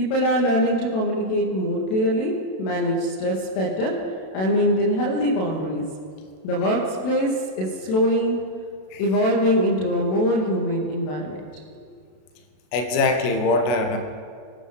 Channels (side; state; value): right; late; 32 ms